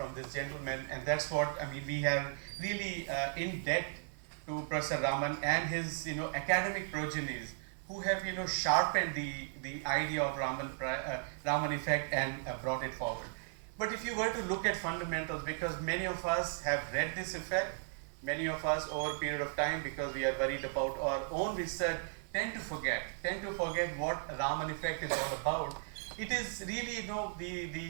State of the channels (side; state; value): left; silent; 54 dB below the other